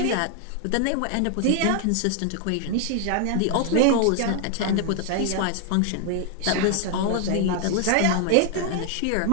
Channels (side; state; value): both; different; correlation 0.00